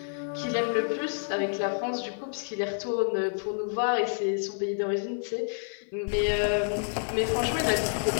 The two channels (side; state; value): right; silent; digital silence